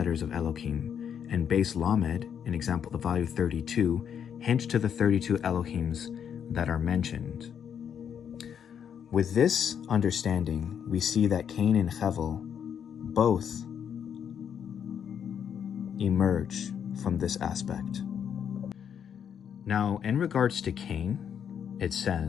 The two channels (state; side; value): quieter; right; 8.2 dB